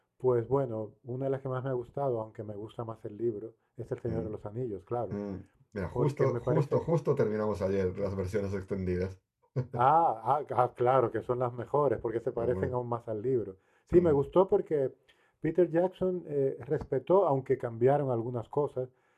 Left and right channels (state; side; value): identical; both; correlation 1.00